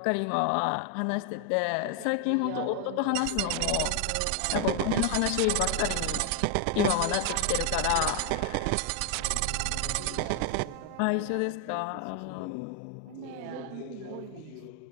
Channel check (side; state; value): both; different; correlation 0.01